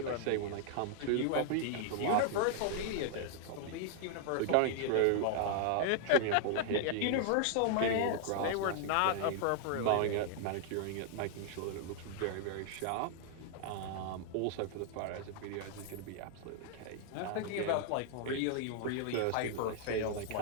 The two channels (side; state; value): both; different; correlation 0.00